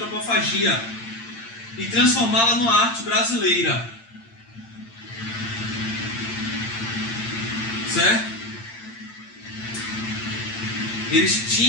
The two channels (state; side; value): late; right; 8.8 ms